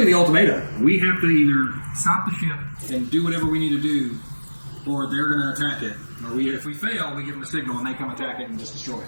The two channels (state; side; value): inverted; both; correlation -1.00